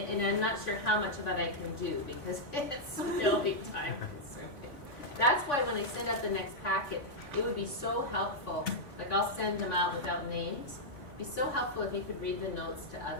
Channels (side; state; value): right; late; 3.5 ms